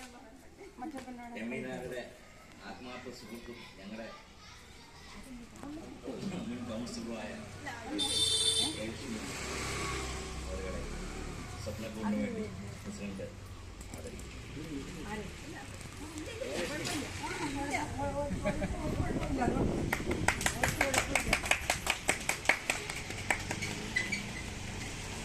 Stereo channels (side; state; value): both; identical; correlation 1.00